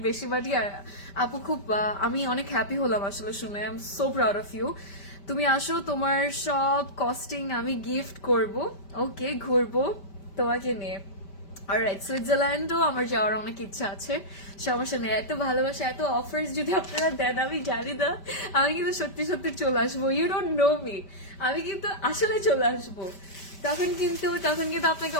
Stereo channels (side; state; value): right; late; 5.1 ms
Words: বেশি বাড়ি। আর আপু খুব আমি অনেক হ্যাপি হলাম আসলে শুনে। I am so proud of you. তুমি আসো, তোমার সব কস্টিং আমি গিফট করব। ওকে, ঘুরবো তোমাকে নিয়ে। অলরাইট, সুইজারল্যান্ডও আমার যাওয়ার অনেক ইচ্ছা আছে, সমস্যা নেই। এত ভালোবাসা, এত অফার্স যদি আপনারা দেন, আমি জানি না, আমি কিন্তু সত্যি সত্যি চলে আসবো। ইউ ডোন্ট নো মি, আমি কিন্তু আসলে চলে আসবো। তখন কিন্তু আপনাকে